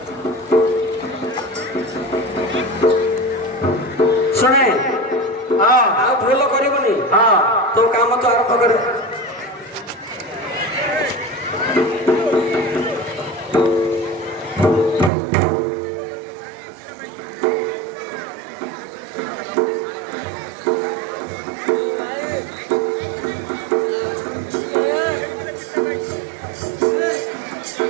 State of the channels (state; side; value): drops out; left; at 15.1 s